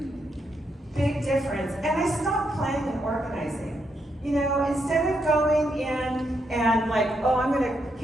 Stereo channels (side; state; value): both; normal; correlation 0.79